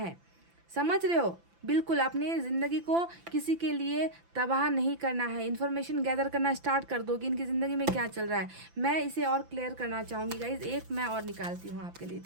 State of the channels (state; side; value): late; left; 5.9 ms